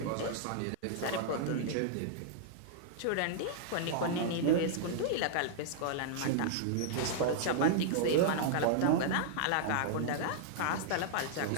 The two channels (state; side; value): different; both; correlation -0.01